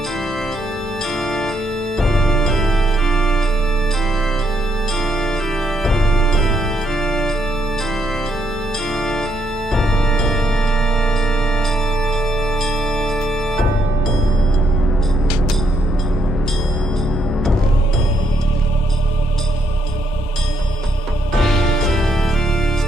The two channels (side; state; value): both; normal; correlation 0.75